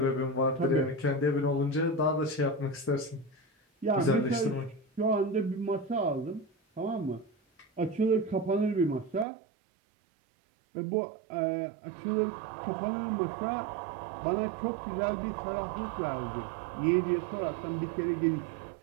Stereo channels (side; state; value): left; drops out; at 9.2 s